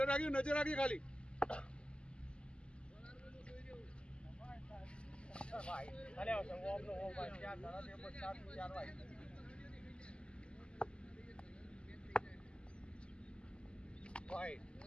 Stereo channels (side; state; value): right; late; 0.051 ms